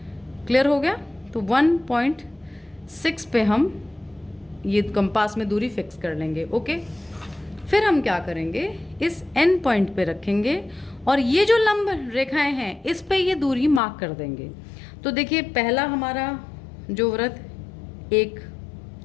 क्लियर हो गया। तो 1.6 पे हम ये कंपास में दूरी फिक्स कर लेंगे। ओके, फिर हम क्या करेंगे, इस एन पॉइंट पे रखेंगे और ये जो लंब रेखाएं हैं इस पे ये दूरी मार्क कर देंगे। तो देखिए पहला हमारा जो वृत्त एक,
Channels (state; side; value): drops out; right; at 13.8 s